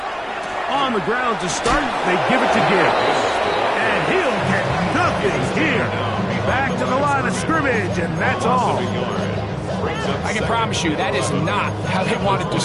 On the ground to start, they give it to Gibbs. And he'll get nothing here. Back to the line of scrimmage, and that's all. I can promise you that is not how they wanted to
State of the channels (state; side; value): identical; both; correlation 1.00